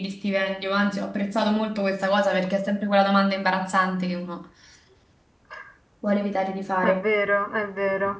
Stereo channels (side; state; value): both; identical; correlation 1.00